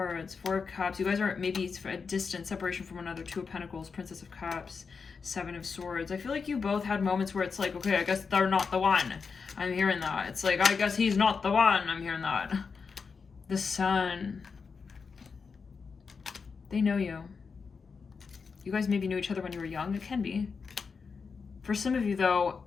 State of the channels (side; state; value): right; quieter; 5.3 dB